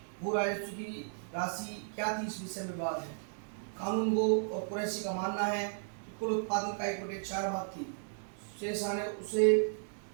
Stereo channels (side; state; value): left; silent; digital silence